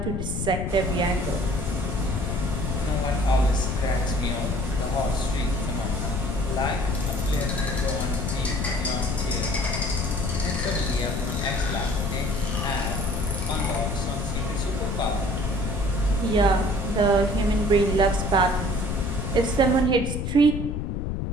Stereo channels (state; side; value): noise; left; rumble, 2 dB below the sound